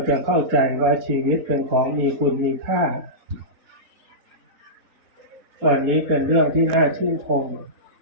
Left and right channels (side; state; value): left; late; 4.2 ms